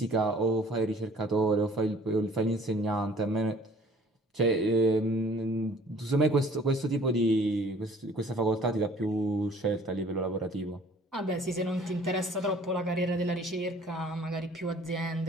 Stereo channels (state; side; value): normal; both; correlation 0.54